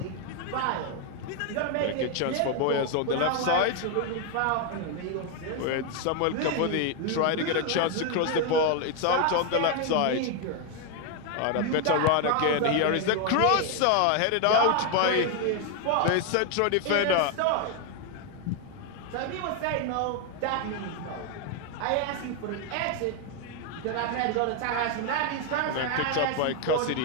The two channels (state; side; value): different; both; correlation 0.01